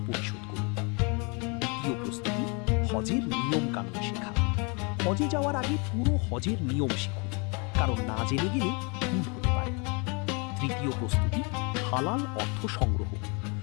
পরিশোধ করুন। দ্বিতীয় প্রস্তুতি, হজের নিয়ম কানুন শেখা। হজে যাওয়ার আগে পুরো হজের নিয়ম শিখুন, কারণ না জেনে গেলে ভুল হতে পারে। তৃতীয় প্রস্তুতি, হালাল অর্থ সংগ্রহ।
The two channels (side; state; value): right; quieter; 32.6 dB